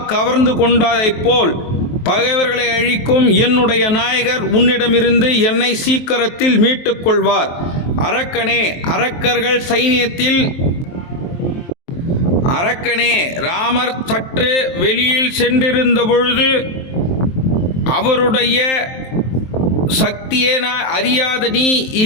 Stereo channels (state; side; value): late; right; 23 ms